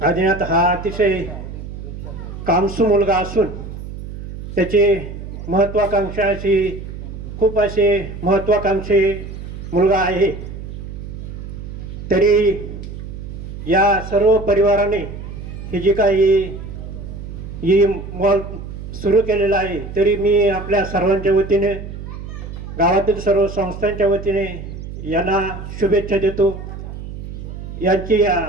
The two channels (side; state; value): right; noise; hum, 10 dB below the sound